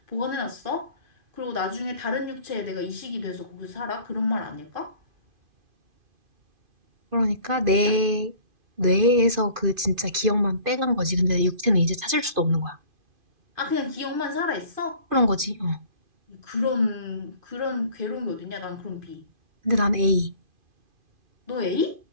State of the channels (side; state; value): left; late; 2.5 ms